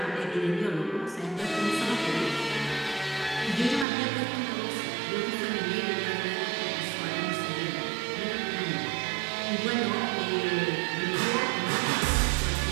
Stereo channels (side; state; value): left; drops out; at 3.9 s